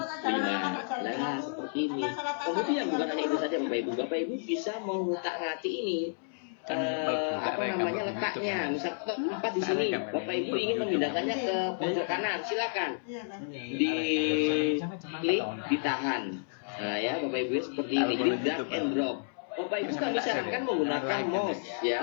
5. Nah, seperti ini. Kemudian bukan hanya itu saja Bapak Ibu. Bapak Ibu bisa mengutak-ngatik ini. Letaknya. Misal 4 di sini, Bapak Ibu ingin memindahkannya ke pojok kanan, silakan. Diklik, ditahan. Nah, ya Bapak Ibu seperti ini. Jadi drag and drop. Bapak Ibu kami sarankan menggunakan mouse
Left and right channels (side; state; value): right; silent; 57 dB below the other